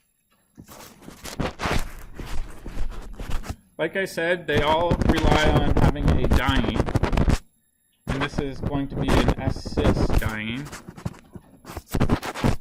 Like I said, they all rely on having a diene. And this is going to be an S-cis diene.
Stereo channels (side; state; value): both; identical; correlation 1.00